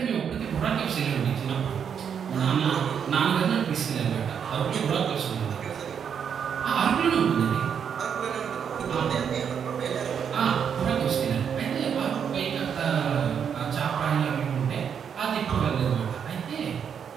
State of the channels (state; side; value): quieter; left; 7.6 dB